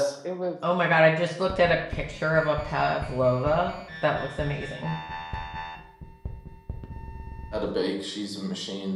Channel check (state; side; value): identical; both; correlation 1.00